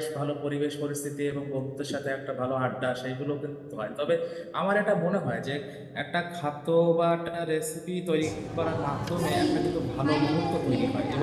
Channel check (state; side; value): identical; both; correlation 1.00